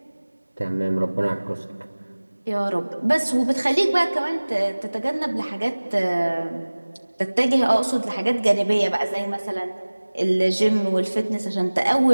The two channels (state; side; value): inverted; both; correlation -1.00